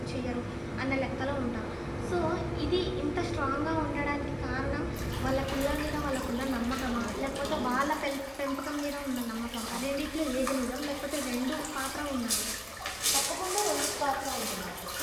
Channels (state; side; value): identical; both; correlation 1.00